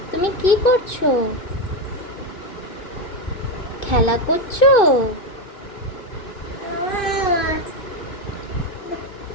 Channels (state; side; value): late; right; 2.6 ms